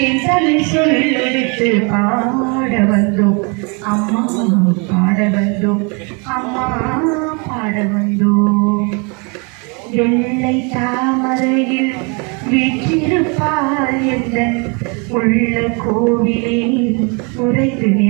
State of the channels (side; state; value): left; quieter; 33.0 dB